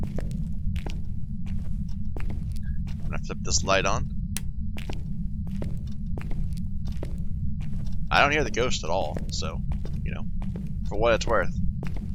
I'm gonna flip this light on. I don't hear the ghost at all, so, for what it's worth.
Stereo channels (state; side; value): identical; both; correlation 1.00